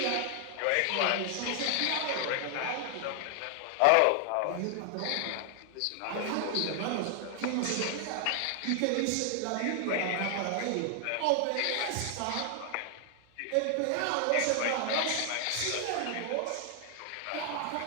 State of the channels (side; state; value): both; different; correlation 0.00